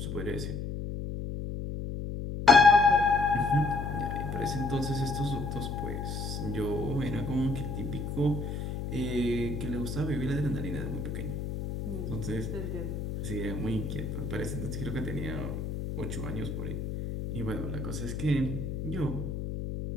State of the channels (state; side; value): noise; left; hum, 4 dB below the sound